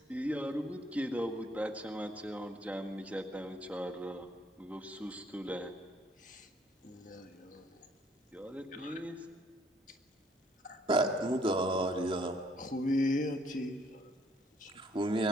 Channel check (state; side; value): normal; both; correlation 0.64